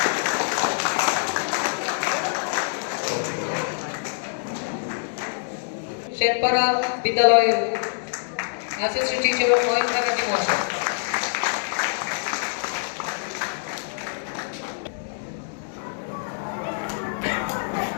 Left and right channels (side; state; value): right; silent; digital silence